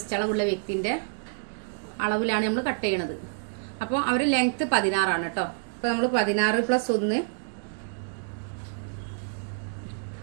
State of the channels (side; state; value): left; silent; 60 dB below the other